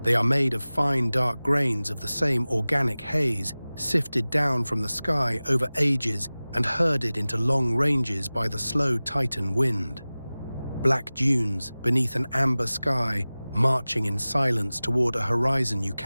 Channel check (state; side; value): inverted; both; correlation -0.98